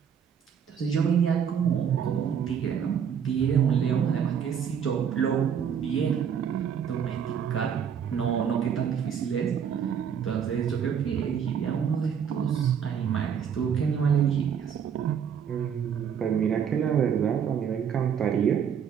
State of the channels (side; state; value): left; quieter; 7.8 dB